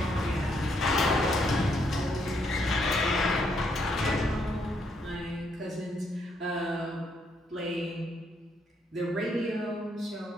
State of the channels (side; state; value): both; normal; correlation 0.74